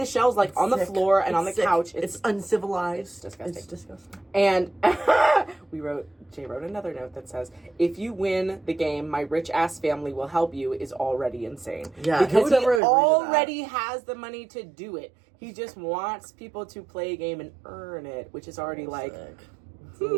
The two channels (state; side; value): drops out; left; at 12.8 s